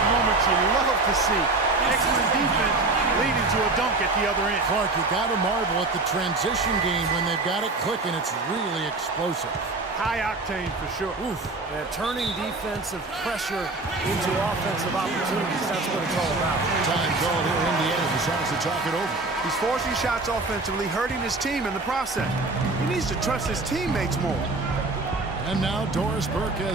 moments you love to see. Excellent defense leading to a dunk at the other end. Clark, you got to marvel at the transition game when they've got it clicking. It's really explosive. High octane for sure. Oof. Yeah, turning defensive pressure into offensive opportunities. That's what it's all about. Time called here. Indiana decides to talk it over. He's forcing shots offensively, hurting his team in the process. He needs to trust his teammates more. And now Doris Burke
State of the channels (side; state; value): left; quieter; 3.3 dB